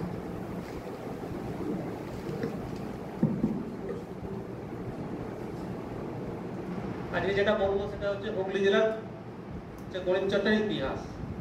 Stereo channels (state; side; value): identical; both; correlation 1.00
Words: আজকে যেটা বলবো সেটা হচ্ছে হুগলি জেলার গণিত চর্চার ইতিহাস।